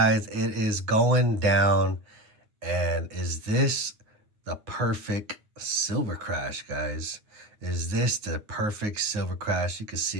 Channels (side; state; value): left; late; 9.6 ms